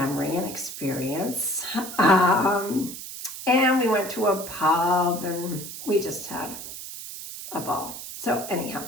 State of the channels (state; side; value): noise; right; hiss, 10 dB below the sound